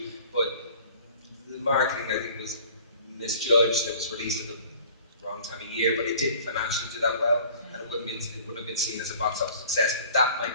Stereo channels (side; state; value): both; inverted; correlation -0.49